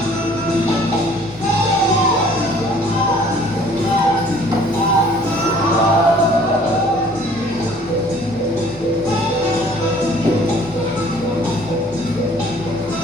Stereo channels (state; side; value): normal; both; correlation 0.54